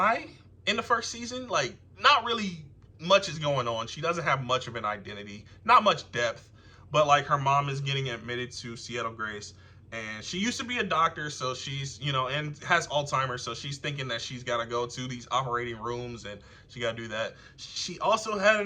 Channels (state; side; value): identical; both; correlation 1.00